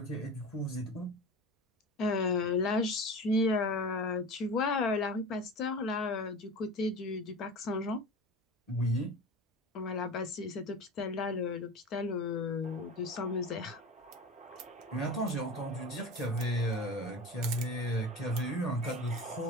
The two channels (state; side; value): normal; both; correlation 0.33